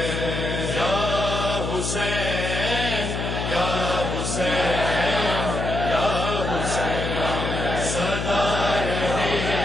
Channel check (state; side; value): noise; left; hum, 3 dB below the sound